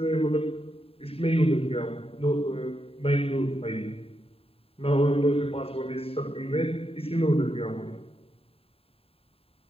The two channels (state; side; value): late; right; 0.27 ms